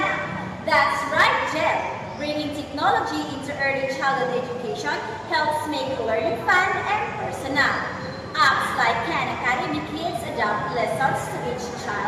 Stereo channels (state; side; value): identical; both; correlation 1.00